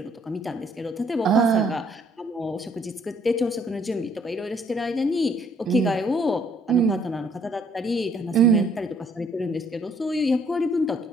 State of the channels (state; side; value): normal; both; correlation 0.64